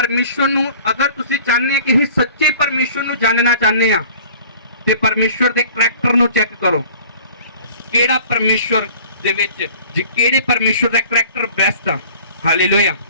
ਨੂੰ ਅਗਰ ਤੁਸੀਂ ਚਾਹੁੰਦੇ ਕਿ ਅਸੀਂ ਸੱਚੇ ਪਰਮੇਸ਼ਵਰ ਨੂੰ ਜਾਣਨਾ ਚਾਹੁੰਦੇ ਆ, ਤੇ ਪਰਮੇਸ਼ਵਰ ਦੇ ਕਰੈਕਟਰ ਨੂੰ ਚੈੱਕ ਕਰੋ। ਕਿਹੜਾ ਪਰਮੇਸ਼ਵਰ ਦੇ ਵਿੱਚ ਕਿਹੜੇ ਪਰਮੇਸ਼ਵਰ ਦਾ ਕਰੈਕਟਰ ਬੈਸਟ ਆ? ਹਾਲੇਲੂਇਆ।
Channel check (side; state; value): both; inverted; correlation -0.48